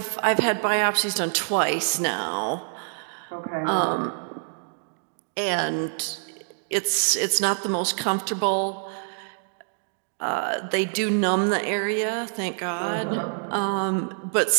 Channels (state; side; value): silent; left; digital silence